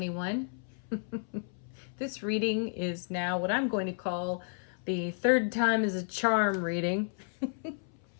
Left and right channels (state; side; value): silent; right; 56 dB below the other